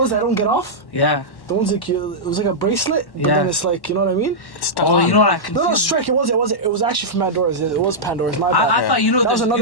that don't get off? Yeah. The ones like it was like a bracelet, but Yeah. then it's like, you know what I mean? Oh, you know what I No, confused? Strike. It was actually from Pandora's. It was Pandora's. My bad. I thought That was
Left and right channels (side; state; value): right; late; 1.1 ms